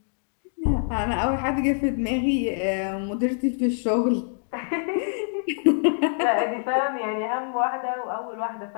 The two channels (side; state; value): right; silent; digital silence